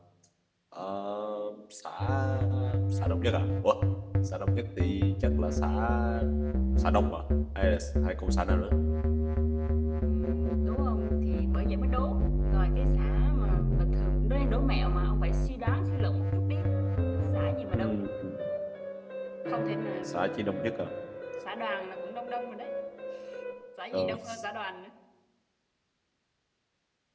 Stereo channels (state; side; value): identical; both; correlation 1.00